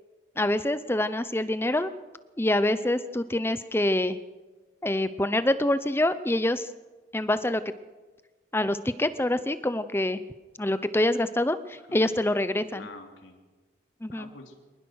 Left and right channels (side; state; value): both; normal; correlation 0.75